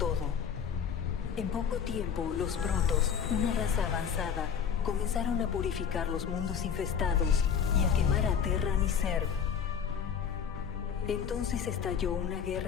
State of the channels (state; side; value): quieter; right; 7.4 dB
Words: En poco tiempo, los Protoss, una raza avanzada, comenzaron a purificar los mundos infestados y a quemar a Terran y Zerg. Entonces estalló una